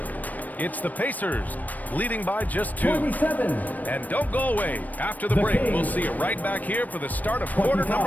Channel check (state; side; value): late; right; 0.080 ms